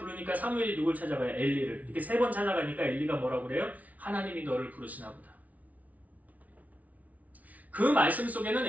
사무엘이 누굴 찾아가요? 엘리를. 이렇게 3번 찾아가니까 엘리가 뭐라고 그래요? 하나님이 너를 부르시나 보다. 그 말씀 속에는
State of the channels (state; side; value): late; left; 0.071 ms